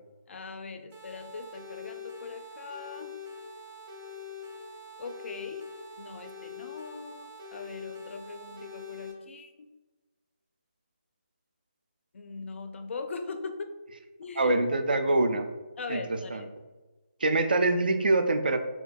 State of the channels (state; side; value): inverted; both; correlation -0.72